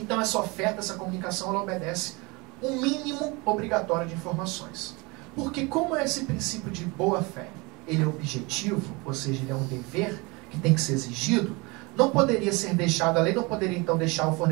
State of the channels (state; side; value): quieter; left; 26.4 dB